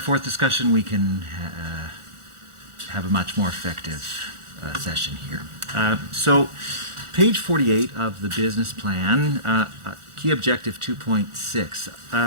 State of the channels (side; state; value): left; late; 1.4 ms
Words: forth discussion, we can have a much more effective session here. So, page 48 of the business plan, key objective